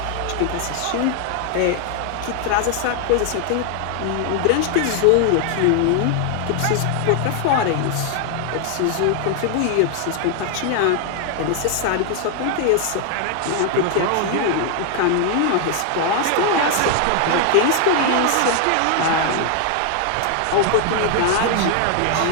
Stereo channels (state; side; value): different; both; correlation 0.00